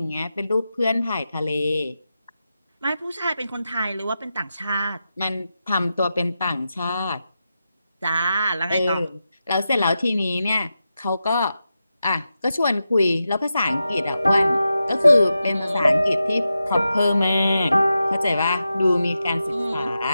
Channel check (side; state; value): both; inverted; correlation -0.90